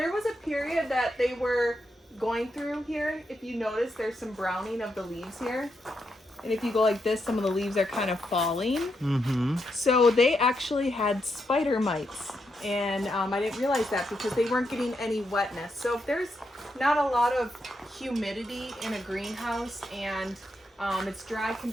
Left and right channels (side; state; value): both; normal; correlation 0.82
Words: was a period that they were going through here. If you notice, there's some browning of the leaves here. And if you go like this, some of the leaves are kind of falling. Mm-hmm. So they actually had spider mites. And I didn't realize that because they weren't getting any wetness. So if there's not a lot of humidity in a greenhouse and it's dry